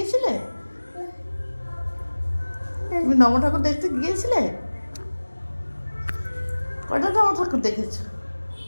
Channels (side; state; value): both; inverted; correlation -1.00